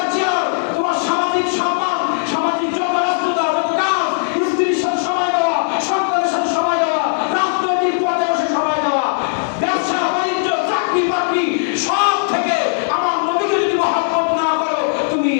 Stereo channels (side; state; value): right; silent; 56 dB below the other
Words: চেয়ার, তোমার সামাজিক সম্মান, সামাজিক যত রাষ্ট্রতা, যত কাজ, স্ত্রীর সাথে সময় দেওয়া, সন্তানের সাথে সময় দেওয়া,